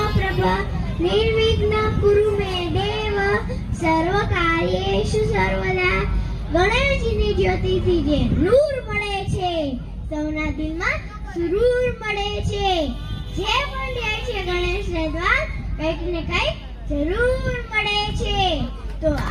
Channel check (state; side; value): identical; both; correlation 1.00